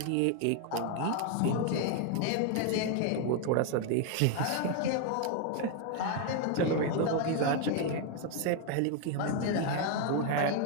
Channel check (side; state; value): both; different; correlation 0.01